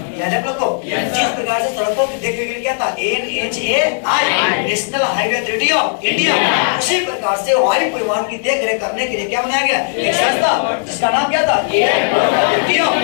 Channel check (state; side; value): silent; right; 61 dB below the other